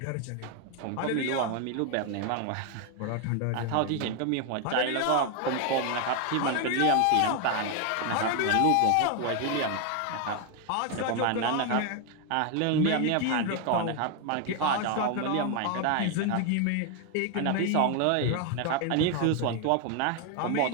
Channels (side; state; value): both; different; correlation 0.01